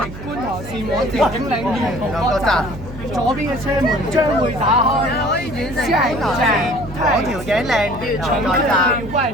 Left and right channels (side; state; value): right; noise; hum, 12 dB below the sound